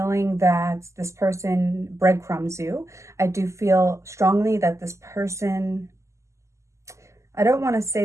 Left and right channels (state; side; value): late; left; 0.14 ms